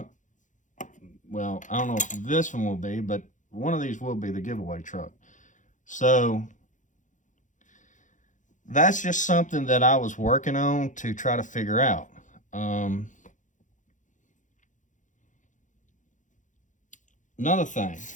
Well, I don't know if this one will be, but one of these will be the giveaway truck. So that's just something that I was working on to try to figure out. Another thing,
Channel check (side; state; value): right; late; 0.36 ms